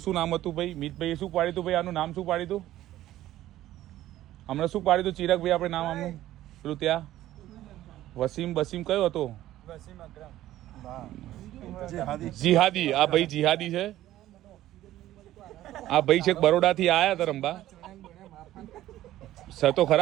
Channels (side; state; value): left; quieter; 14.1 dB